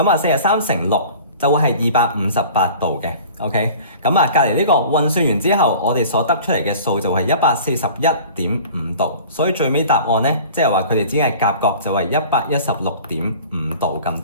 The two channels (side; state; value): both; inverted; correlation -0.43